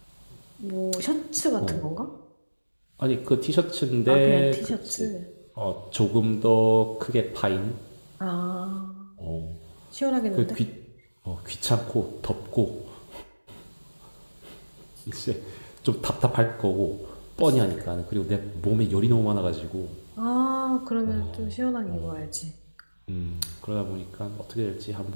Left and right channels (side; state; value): both; inverted; correlation -1.00